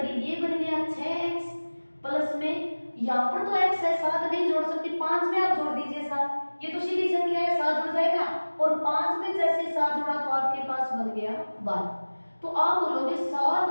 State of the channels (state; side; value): inverted; both; correlation -1.00